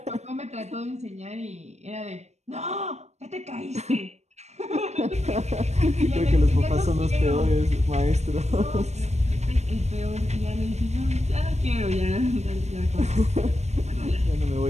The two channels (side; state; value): left; late; 0.32 ms